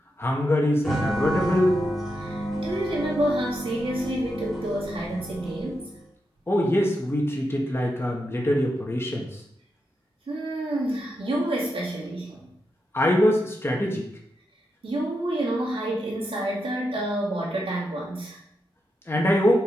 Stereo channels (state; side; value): normal; both; correlation 0.85